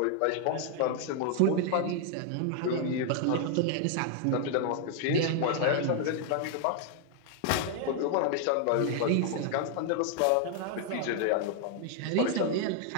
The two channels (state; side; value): different; both; correlation 0.00